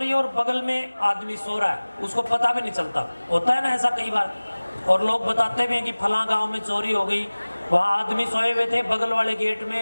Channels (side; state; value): both; inverted; correlation -1.00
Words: है और बगल में आदमी सो रहा है, उसको पता भी नहीं चलता, होता है ना ऐसा कई बार। और लोग बताते भी हैं कि फलां गांव में चोरी हो गई, वहाँ आदमी सोए हुए थे, बगल वाले गेट